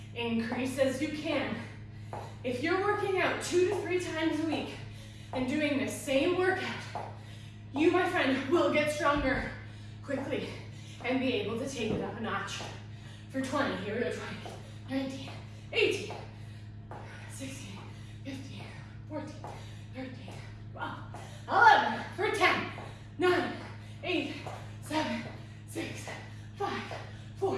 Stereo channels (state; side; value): identical; both; correlation 1.00